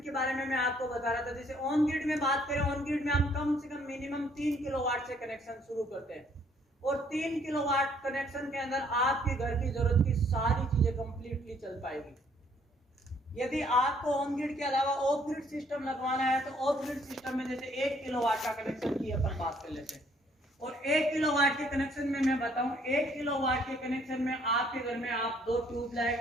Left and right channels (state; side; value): normal; both; correlation 0.64